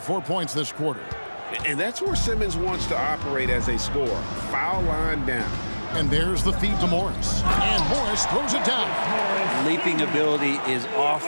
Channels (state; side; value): inverted; both; correlation -1.00